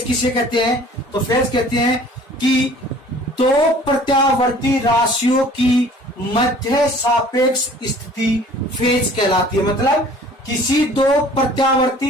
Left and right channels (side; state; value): both; normal; correlation 0.50